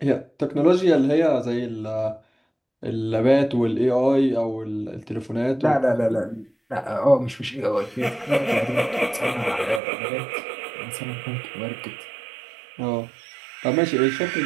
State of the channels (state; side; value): drops out; left; at 9.8 s